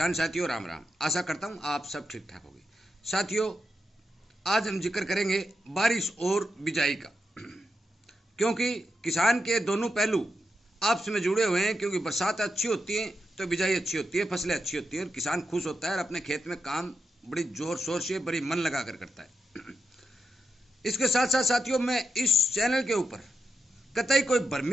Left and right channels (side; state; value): both; normal; correlation 0.87